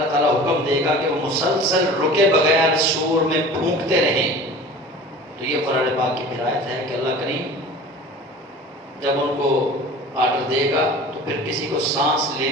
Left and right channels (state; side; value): normal; both; correlation 0.40